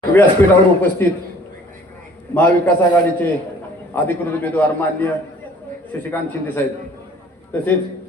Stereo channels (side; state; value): both; normal; correlation 0.53